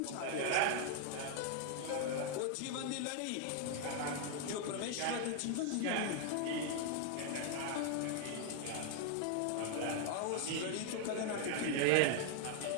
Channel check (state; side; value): different; both; correlation 0.00